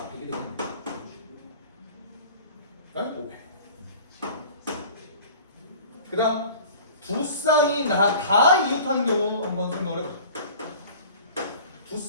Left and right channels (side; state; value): both; inverted; correlation -0.43